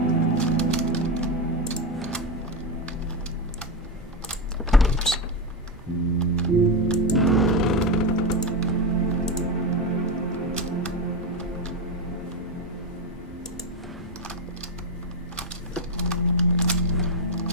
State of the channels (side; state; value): both; normal; correlation 0.12